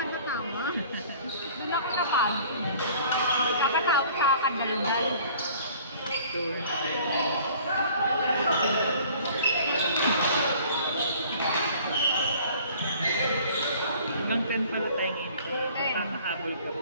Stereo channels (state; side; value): inverted; both; correlation -0.51